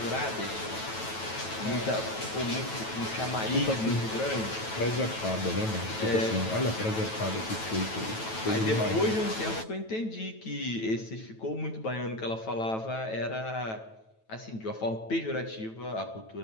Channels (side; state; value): right; late; 9.1 ms